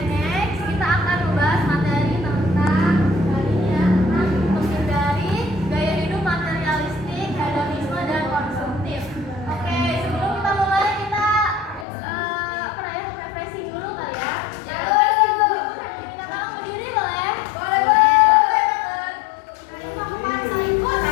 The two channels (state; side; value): drops out; right; at 11.9 s